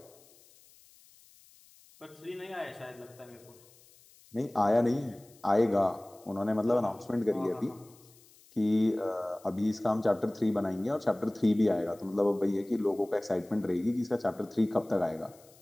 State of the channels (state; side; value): noise; left; hiss, 27 dB below the sound